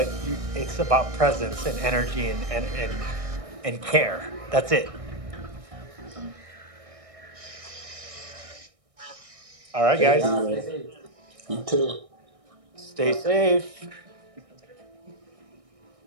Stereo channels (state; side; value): late; left; 1.6 ms